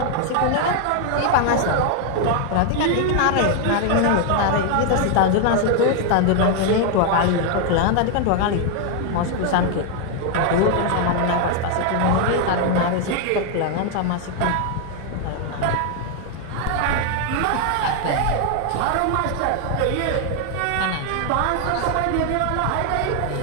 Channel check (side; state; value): both; different; correlation 0.00